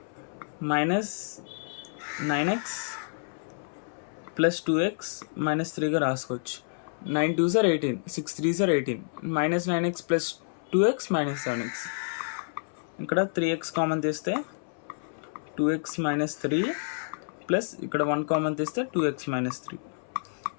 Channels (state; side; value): silent; right; 59 dB below the other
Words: minus 9x plus 2x minus 3గా రాసుకోవచ్చు. 9 2s are 18, 6 3s are 18, minus 9x plus 2x minus 7x. ఇక్కడ 3x common తీస్తే 2x minus 3 plus ఇక్కడ 1 common తీస్తే 2x minus 3